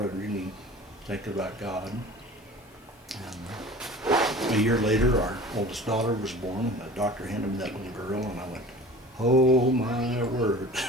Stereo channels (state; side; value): normal; both; correlation 0.41